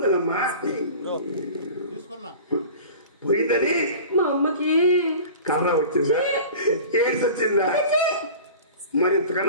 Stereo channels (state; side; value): inverted; both; correlation -0.39